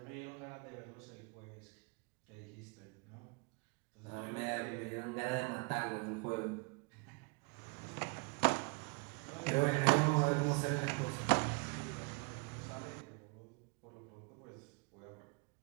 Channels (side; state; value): left; quieter; 31.8 dB